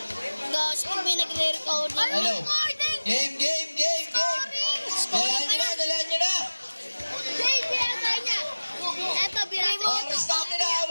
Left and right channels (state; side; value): inverted; both; correlation -1.00